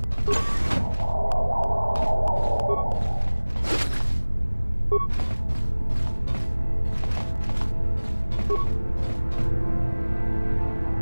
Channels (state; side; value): inverted; both; correlation -1.00